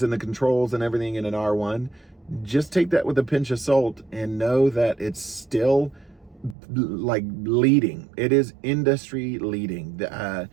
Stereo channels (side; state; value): left; drops out; at 6.6 s